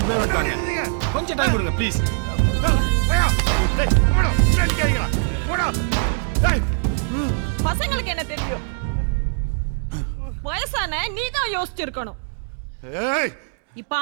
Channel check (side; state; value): left; silent; digital silence